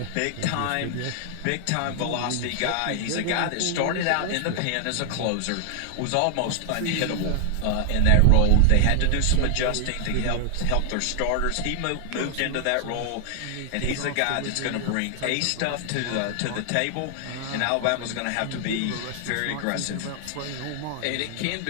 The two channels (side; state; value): both; different; correlation 0.00